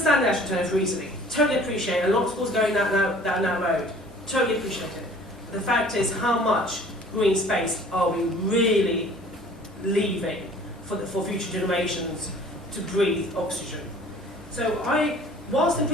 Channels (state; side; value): normal; both; correlation 0.50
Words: the AstroTurf reasoning. Totally appreciate it. A lot of schools going down that road. Totally appreciate it. But the fact is, how much green space are we really leaving for future generations to breathe oxygen? So whilst in